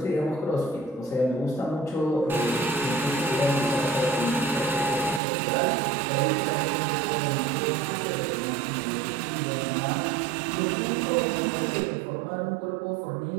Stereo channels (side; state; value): left; drops out; at 5.2 s